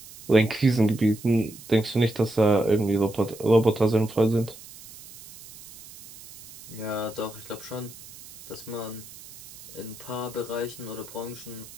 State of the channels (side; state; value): right; noise; hiss, 18 dB below the sound